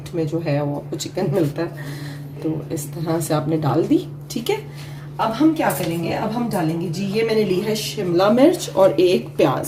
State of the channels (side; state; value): both; identical; correlation 1.00